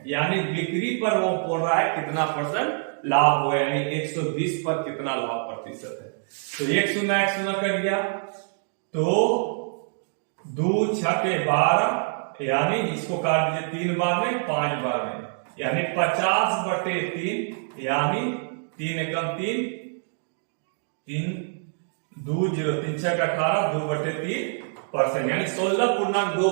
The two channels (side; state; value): left; silent; digital silence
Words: यानी बिक्री पर वो बोल रहा है कितना परसेंट लाभ हुआ, यानी 120 पर कितना लाभ प्रतिशत है। तो 1 0 कर गया, तो 2 6 12, यानी इसको काट दीजिए 3 बार में 5 बार में, यानी 50/3, यानी 3 एकम 3, 3 2 0 3 6 18, 2/3%, यानी